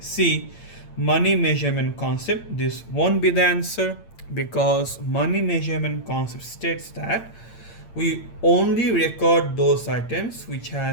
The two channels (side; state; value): right; late; 8.8 ms